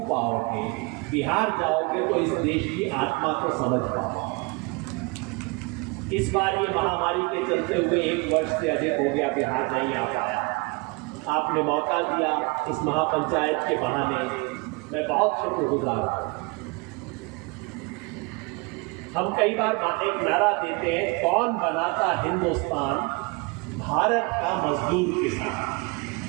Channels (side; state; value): left; quieter; 28.6 dB